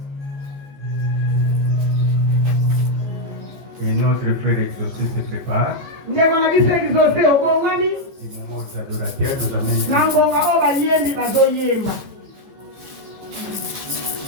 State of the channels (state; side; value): late; left; 15 ms